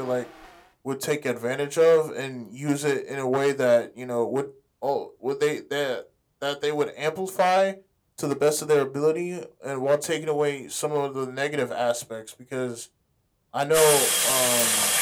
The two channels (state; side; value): identical; both; correlation 1.00